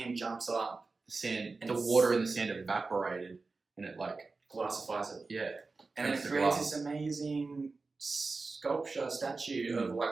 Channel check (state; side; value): quieter; left; 3.9 dB